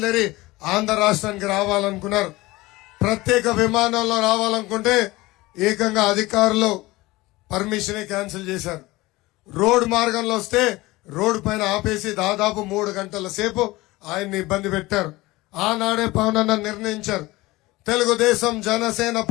ఆంధ్ర రాష్ట్రానికి రావాలనుకున్నారు. ప్రత్యేక విమానంలో రావాలనుకుంటే ఏకంగా అధికారులు పర్మిషన్ క్యాన్సిల్ చేశారు. రోడ్ మార్గంలో వస్తే రోడ్డు పైన ఆపేసి దాదాపు 3 గంటల సేపు ఆయన్ని ఇబ్బంది పెట్టారు. ఆనాడే పవన్ అన్న నిర్ణయించారు, తెలుగుదేశం జనసేన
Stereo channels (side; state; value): right; quieter; 20.2 dB